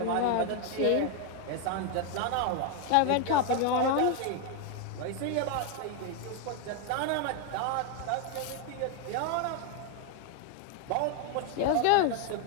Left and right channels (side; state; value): both; different; correlation 0.01